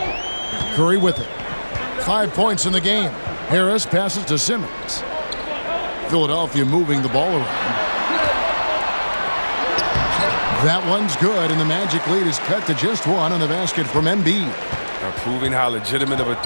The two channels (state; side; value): inverted; both; correlation -1.00